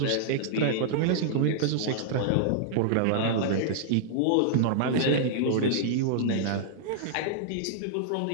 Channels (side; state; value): both; different; correlation -0.01